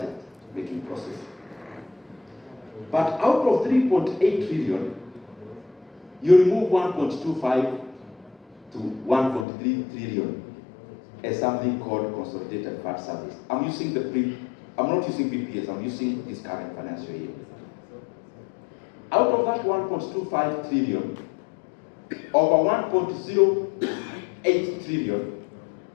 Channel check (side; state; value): right; drops out; at 9.5 s